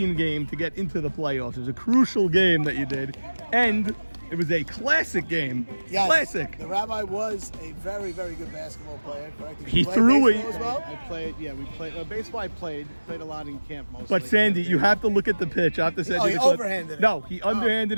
game to get into the playoffs. It was a crucial game that you did. And it was a classic game. Yes, Classic. The rabbi was a very, very good basketball player, correct? Did He you play threw it. baseball as well? I played. Yeah, we played. Baseball. I played a lot in camp mostly. But Sandy, you have to look at the pitch. I have to say, Oh, he overhanded it. No, he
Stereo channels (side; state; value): both; inverted; correlation -1.00